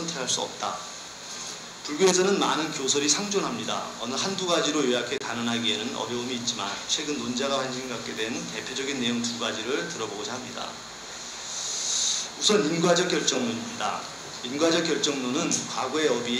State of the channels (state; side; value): identical; both; correlation 1.00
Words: 수 없다. 불교에서는 많은 교설이 상존합니다. 어느 한두 가지로 요약해 단언하기에는 어려움이 있지만 최근 논자가 관심 갖게 된 대표적인 내용 두 가지를 들어보고자 합니다. 우선 인과적 결정론입니다. 인과적 결정론은 과거의